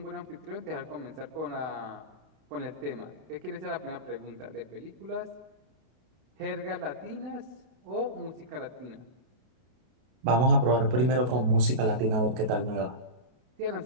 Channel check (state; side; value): late; left; 32 ms